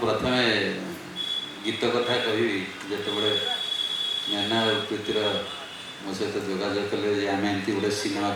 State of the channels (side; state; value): both; identical; correlation 1.00